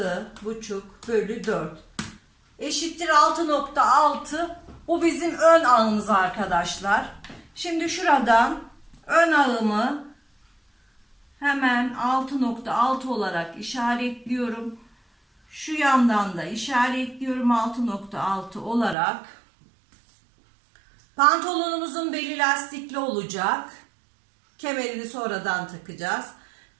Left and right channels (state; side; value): drops out; left; at 18.9 s